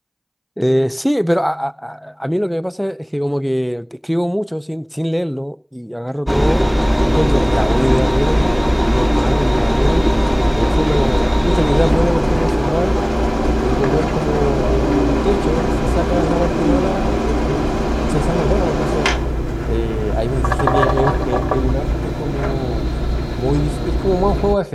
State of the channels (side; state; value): both; identical; correlation 1.00